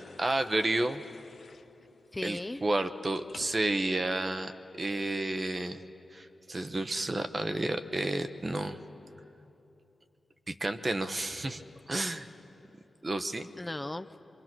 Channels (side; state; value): both; normal; correlation 0.95